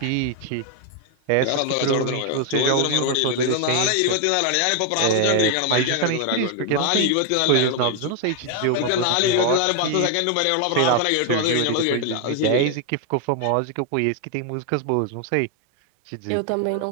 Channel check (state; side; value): different; both; correlation 0.01